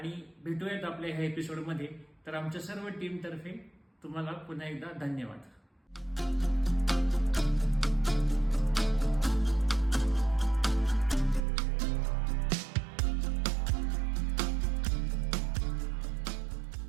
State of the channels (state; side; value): drops out; left; at 11.5 s